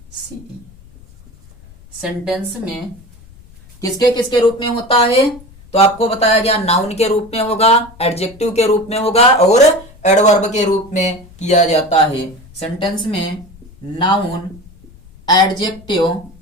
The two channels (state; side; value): noise; left; rumble, 24 dB below the sound